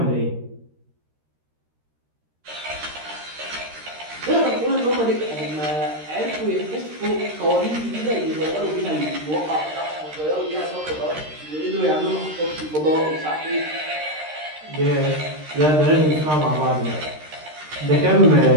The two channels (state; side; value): late; left; 13 ms